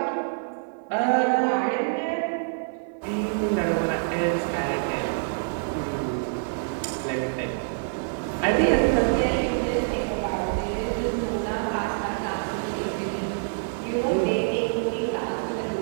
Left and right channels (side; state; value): left; silent; 57 dB below the other